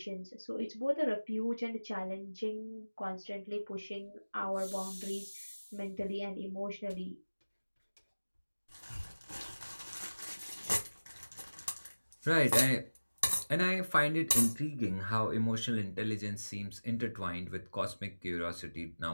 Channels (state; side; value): inverted; both; correlation -1.00